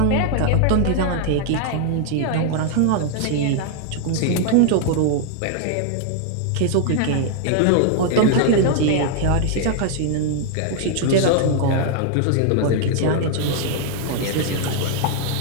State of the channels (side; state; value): both; different; correlation 0.00